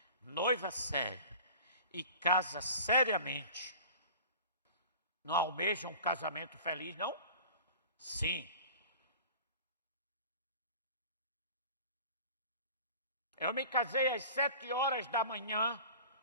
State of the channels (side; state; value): both; inverted; correlation -0.40